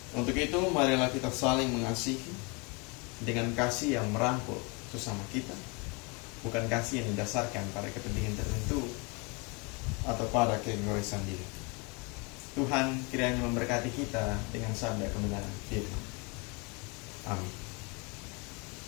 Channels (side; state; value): right; quieter; 30.5 dB